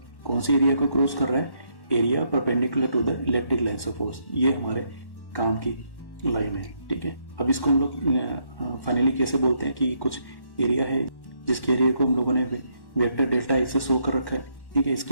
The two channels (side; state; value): right; late; 1.1 ms